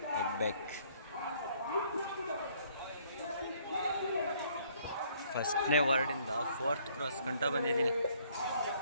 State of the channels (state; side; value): inverted; both; correlation -0.63